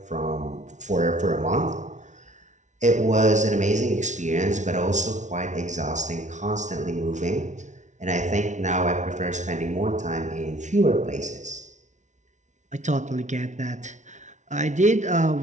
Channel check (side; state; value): left; late; 0.35 ms